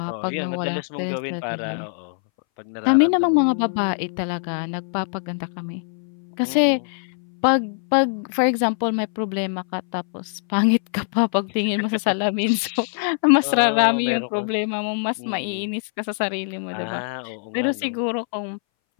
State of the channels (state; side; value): silent; right; 61 dB below the other